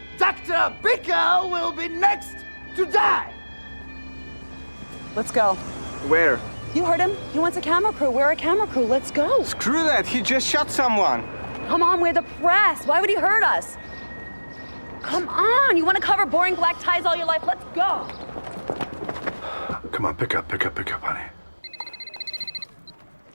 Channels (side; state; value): both; inverted; correlation -1.00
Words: Dr. Bickel will be next to die. Let's go. Where? You heard him. He wants a camera crew. We're a camera crew. Let's go. Screw that. He just shot someone. Come on, we're the press. Why would he hurt us? Come on. You want to cover boring black ties all your life? Let's go. Come on, pick up, honey.